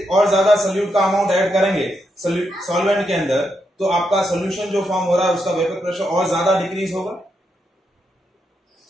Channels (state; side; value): normal; both; correlation 0.82